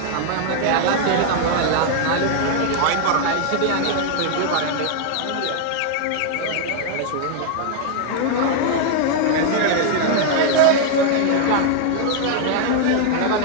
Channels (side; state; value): both; different; correlation 0.00